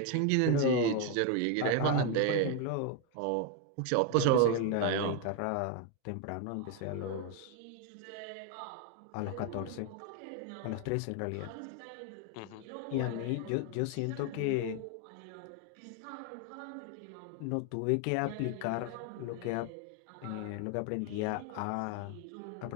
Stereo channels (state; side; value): different; both; correlation 0.01